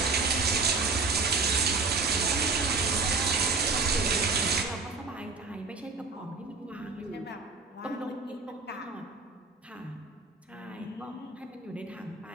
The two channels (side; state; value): left; quieter; 4.1 dB